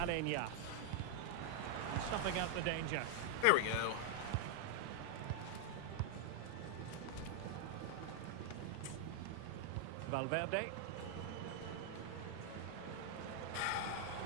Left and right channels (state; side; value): different; both; correlation 0.00